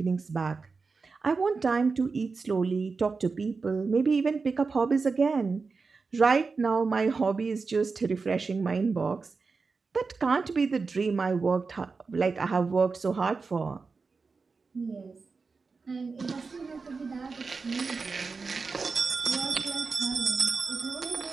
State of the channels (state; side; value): quieter; left; 4.5 dB